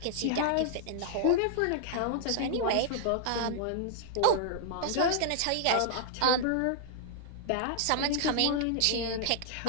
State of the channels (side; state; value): both; different; correlation -0.01